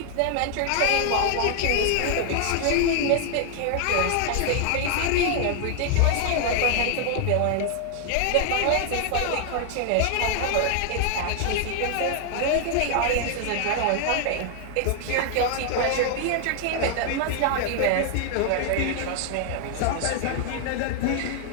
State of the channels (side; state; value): both; different; correlation 0.00